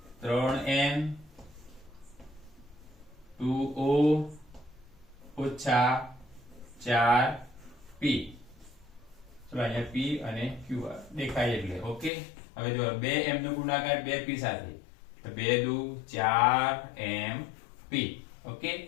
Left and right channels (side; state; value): right; drops out; at 12.1 s